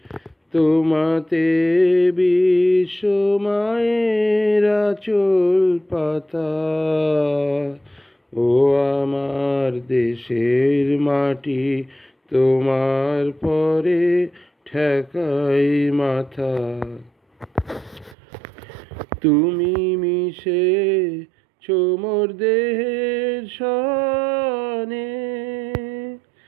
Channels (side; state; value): left; drops out; at 18.2 s